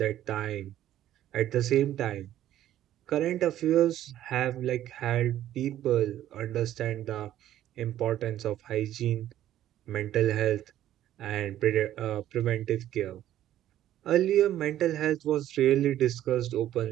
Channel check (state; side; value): quieter; left; 12.5 dB